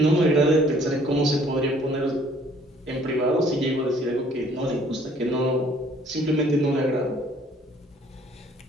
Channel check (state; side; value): normal; both; correlation 0.59